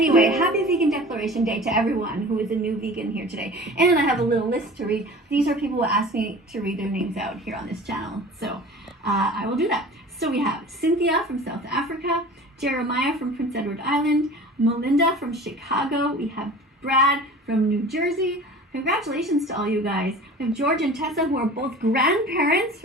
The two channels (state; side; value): normal; both; correlation 0.41